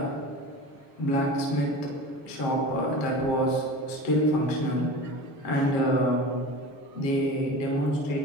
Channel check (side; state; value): right; late; 7.5 ms